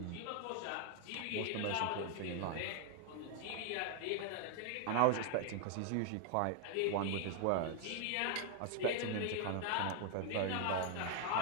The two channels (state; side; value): different; both; correlation 0.00